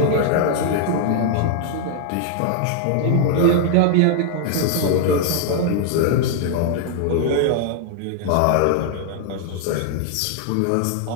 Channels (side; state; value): both; different; correlation 0.00